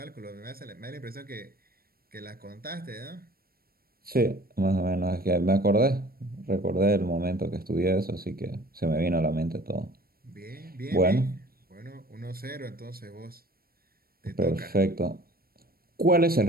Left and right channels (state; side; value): late; left; 0.44 ms